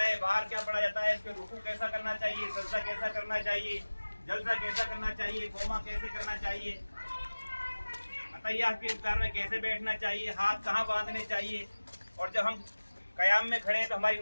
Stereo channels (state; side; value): inverted; both; correlation -1.00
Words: बाहर क्या पढ़ा जाता है, इसके रुकू कैसा करना चाहिए, सजदा कैसा करना चाहिए, जलसा कैसा करना चाहिए, कोमा कैसे करना चाहिए, अतहियात के इफ्तार में कैसे बैठना चाहिए, हाथ कहाँ बांधने चाहिए, और जब हम कयाम में खड़े हैं तो हमारी